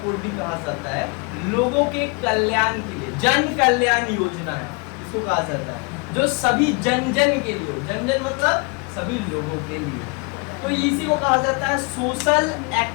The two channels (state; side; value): quieter; right; 30.6 dB